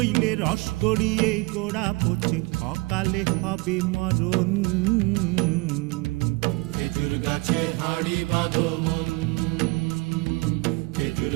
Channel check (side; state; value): left; quieter; 24.3 dB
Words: রস গড়িয়ে গোড়া পচে, অকালে হবে মরণ। খেজুর গাছে হাড়ি বাঁধো মন, খেজুর